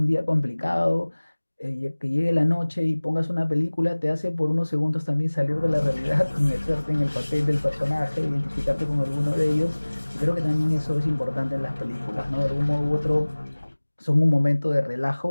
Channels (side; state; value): both; inverted; correlation -1.00